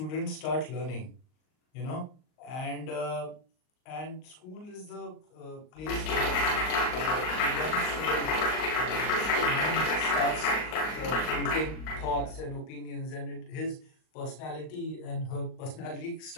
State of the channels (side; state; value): right; late; 39 ms